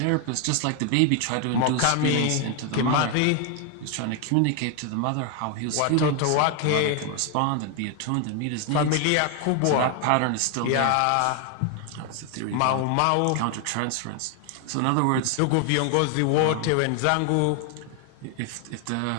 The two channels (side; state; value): both; different; correlation 0.01